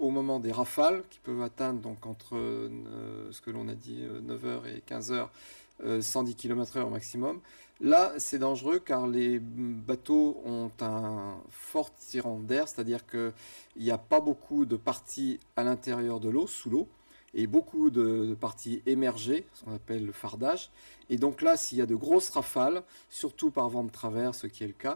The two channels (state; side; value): inverted; both; correlation -1.00